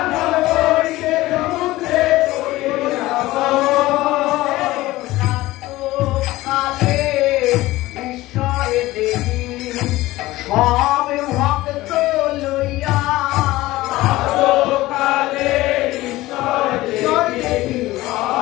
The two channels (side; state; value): right; quieter; 17.9 dB